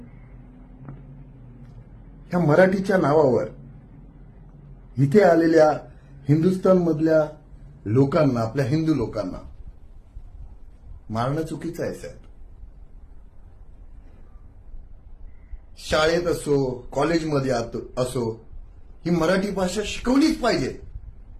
ह्या मराठीच्या नावावर इथे आलेल्या हिंदुस्थानमधल्या लोकांना, आपल्या हिंदू लोकांना मारणं चुकीचं आहे साहेब. शाळेत असो, कॉलेजमध्ये असो, ही मराठी भाषा शिकवलीच पाहिजे.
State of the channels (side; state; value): both; identical; correlation 1.00